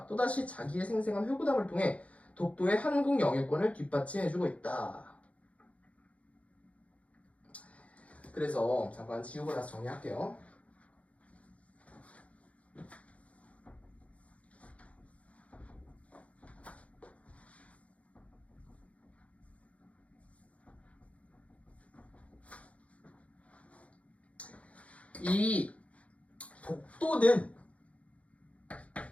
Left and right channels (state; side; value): late; right; 0.065 ms